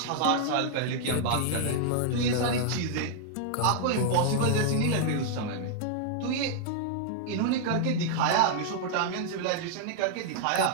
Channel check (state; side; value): different; both; correlation -0.01